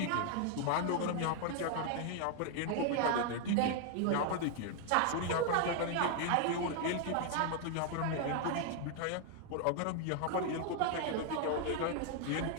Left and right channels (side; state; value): both; different; correlation 0.00